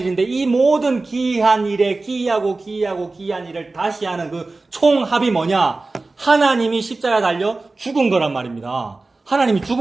이 모든 기이한 일에 기이하고 기이한 일을 다시 하는 그 총합이 뭐냐? 하나님이 십자가에 달려 죽은 거란 말입니다. 하나님이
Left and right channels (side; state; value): left; quieter; 3.4 dB